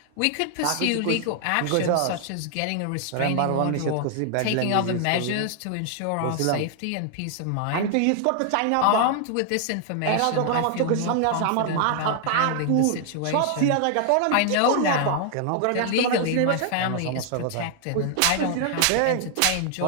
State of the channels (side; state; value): both; different; correlation 0.00